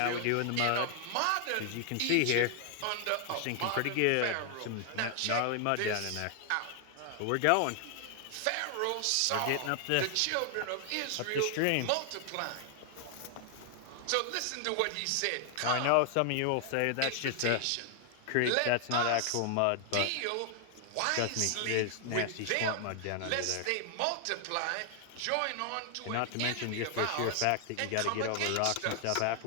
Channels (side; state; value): both; different; correlation 0.00